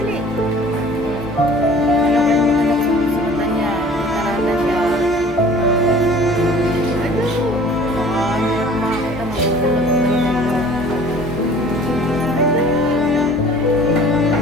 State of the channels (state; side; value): normal; both; correlation 0.48